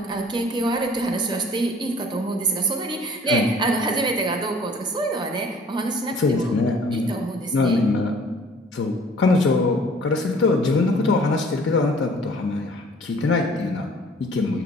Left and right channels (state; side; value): normal; both; correlation 0.53